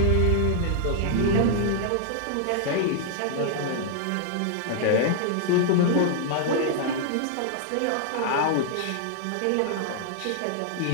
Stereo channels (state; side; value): different; both; correlation -0.01